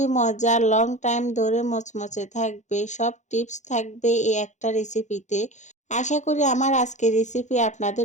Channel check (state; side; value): late; right; 0.35 ms